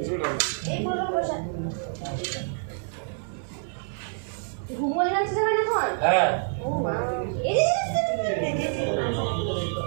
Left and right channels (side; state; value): left; silent; digital silence